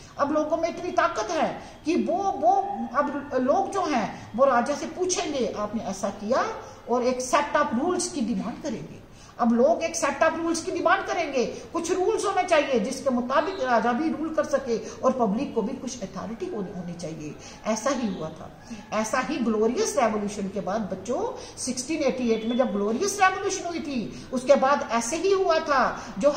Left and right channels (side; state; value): both; identical; correlation 1.00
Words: अब लोगों में इतनी ताकत है कि वो अब लोग जो हैं वो राजा से पूछेंगे आपने ऐसा किया, और एक सेट ऑफ रूल्स की डिमांड करेंगे। अब लोग एक सेट ऑफ रूल्स की डिमांड करेंगे, कुछ रूल्स होने चाहिए जिसके मुताबिक राजा भी रूल कर सके और पब्लिक को भी कुछ अथॉरिटी होनी चाहिए। ऐसा ही हुआ था। ऐसा ही ग्लोरियस रेवोल्यूशन के बाद बच्चों 1688 में जब ग्लोरियस रेवोल्यूशन हुई थी, उसके बाद ऐसे ही हुआ था, जो